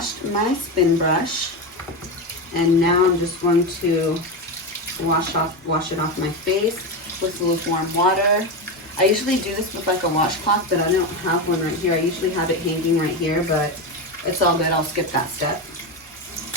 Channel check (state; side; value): normal; both; correlation 0.16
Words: my spin brush and now I'm just going to wash it off my face with lukewarm water. I usually do this with like a washcloth, but I don't have one right here. I usually have it hanging right here, but it's all good. I'll skip that step.